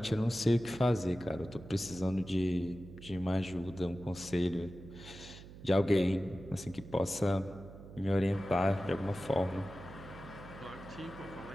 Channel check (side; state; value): right; noise; hum, 16 dB below the sound